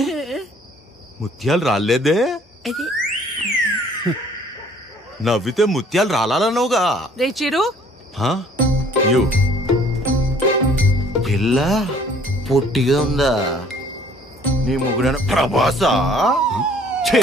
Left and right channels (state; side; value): normal; both; correlation 0.57